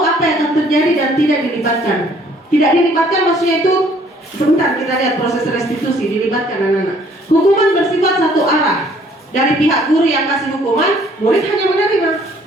apa yang akan terjadi dan tidak dilibatkan. Tidak dilibatkan maksudnya itu, sebentar kita lihat proses restitusi, dilibatkan anak-anak. Hukuman bersifat satu arah. Dari pihak guru yang kasih hukuman, murid hanya menerima.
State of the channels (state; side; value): normal; both; correlation 0.60